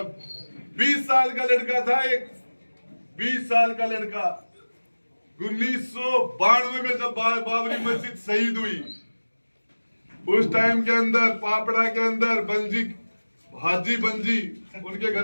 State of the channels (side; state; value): both; inverted; correlation -1.00